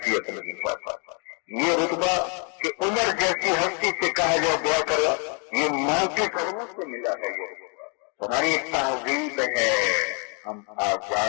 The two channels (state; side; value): quieter; right; 37.9 dB